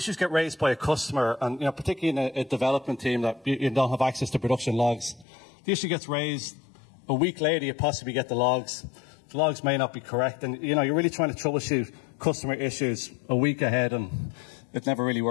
get raised by a customer, and particularly in a development team that you don't have access to production logs. The issue gets raised a week later. You possibly get the logs. The logs may not be correct, and you're really trying to troubleshoot customer issues a week ahead, and it never really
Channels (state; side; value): drops out; right; at 5.2 s